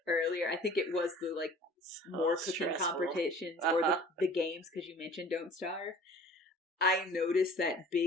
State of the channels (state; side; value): normal; both; correlation 0.47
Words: earlier, I think it was the like more cooking competitions or the games, because you mentioned Don't Starve. I noticed that